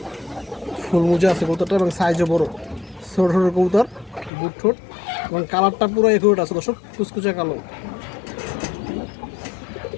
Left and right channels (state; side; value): drops out; right; at 4.3 s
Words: ফুল মুজা আছে কবুতরটা এবং সাইজও বড়, ছোট ছোট কবুতর, বুট ঠোঁট এবং কালারটা পুরো একুরেট আছে দর্শক, কুচকুচা কালো।